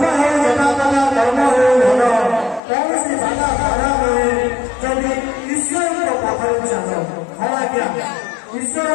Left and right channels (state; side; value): drops out; right; at 2.6 s